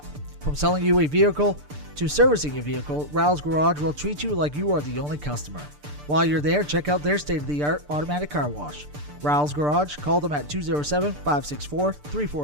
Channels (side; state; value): left; late; 6.8 ms